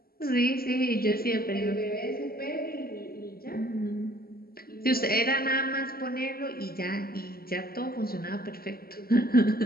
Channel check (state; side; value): late; right; 0.44 ms